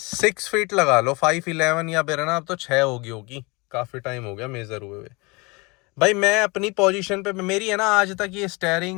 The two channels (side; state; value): right; quieter; 27.0 dB